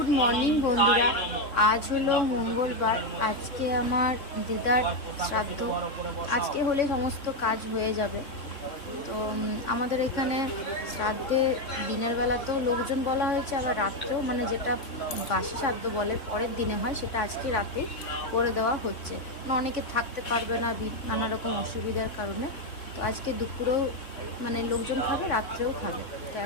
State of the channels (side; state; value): right; late; 3.5 ms